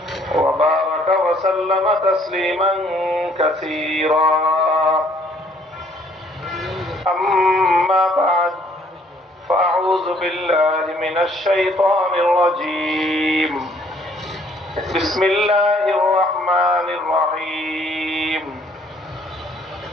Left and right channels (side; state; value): both; normal; correlation 0.63